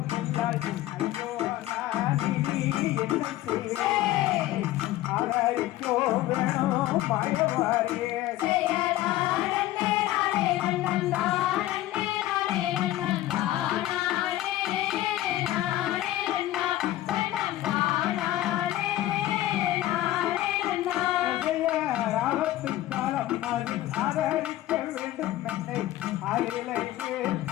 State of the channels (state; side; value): quieter; right; 15.0 dB